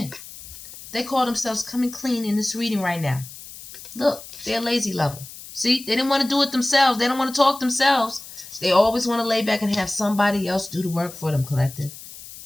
They call themselves coming clean in this reading right now. Look, they're a lazy lover. See, they didn't want to do it themselves. They don't want to talk themselves. They always want to lay back and have somebody else do the work for them, collective.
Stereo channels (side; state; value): left; noise; hiss, 15 dB below the sound